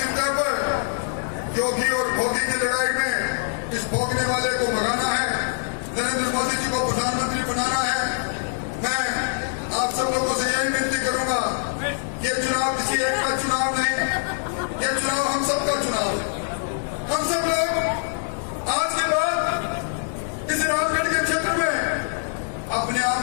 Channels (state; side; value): silent; right; digital silence